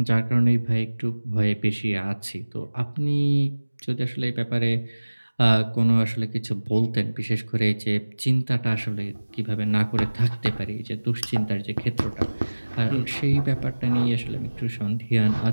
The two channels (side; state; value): both; inverted; correlation -1.00